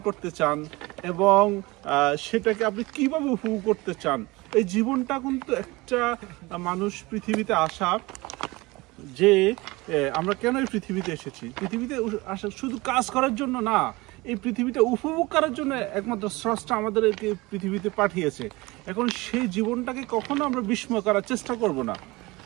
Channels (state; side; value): quieter; left; 22.4 dB